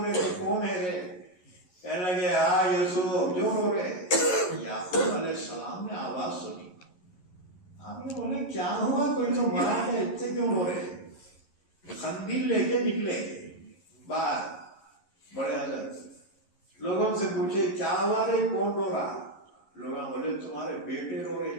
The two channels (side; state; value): right; late; 11 ms